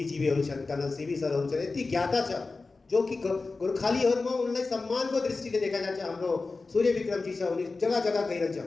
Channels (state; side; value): quieter; right; 3.8 dB